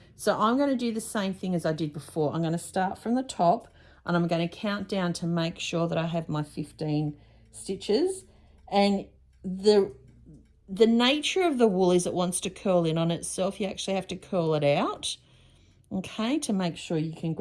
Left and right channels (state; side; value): identical; both; correlation 1.00